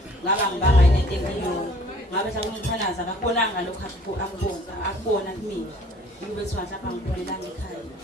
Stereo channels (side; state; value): both; normal; correlation 0.55